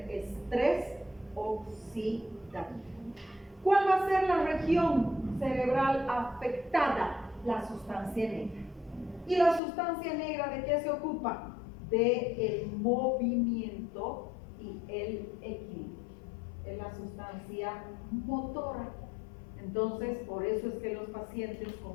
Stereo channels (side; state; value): right; drops out; at 9.6 s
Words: estrés oxidativo. ¿Cuál va a ser la región cerebral afectada? La sustancia negra. ¿Y la sustancia negra de qué se ocupa? Del movimiento y el equilibrio. Es la sustancia motora. Entonces, por eso es que los pacientes